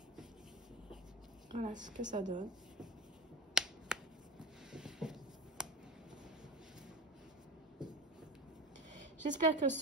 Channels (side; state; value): both; normal; correlation 0.29